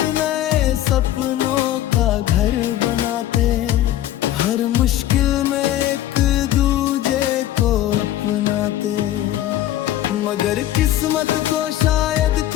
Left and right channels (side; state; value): right; quieter; 13.1 dB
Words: नए सपनों का घर बनाते। हर मुश्किल में एक दूजे को अपनाते। मगर किस्मत को शायद